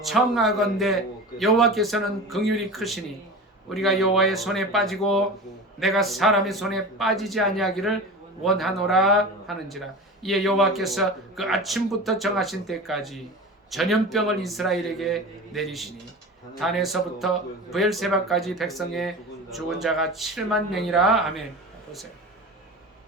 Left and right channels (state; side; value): normal; both; correlation 0.32